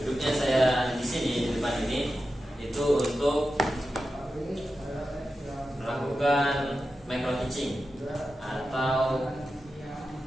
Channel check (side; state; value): both; normal; correlation 0.91